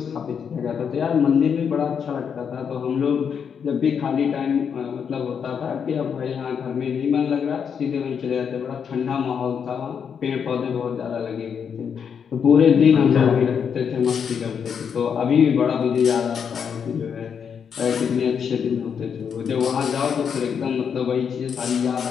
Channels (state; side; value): quieter; right; 7.1 dB